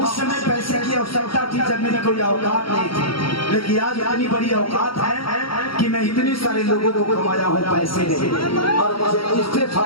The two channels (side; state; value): right; late; 0.74 ms